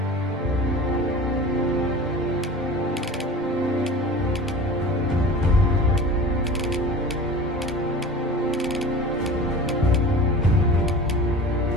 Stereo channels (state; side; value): normal; both; correlation 0.37